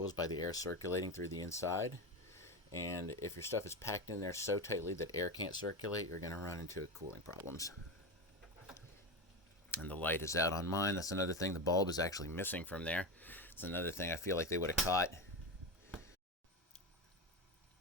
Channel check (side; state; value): both; normal; correlation 0.18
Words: by the air circulating through the inside. And if your stuff is packed in there so tightly that air can't circulate, you're going to run into cooling problems. And the light is out on mine. That's another thing. The bulb is actually missing from there. It's another thing I feel like they would have caught.